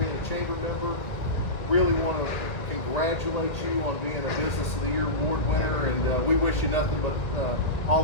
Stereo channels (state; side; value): late; right; 1.9 ms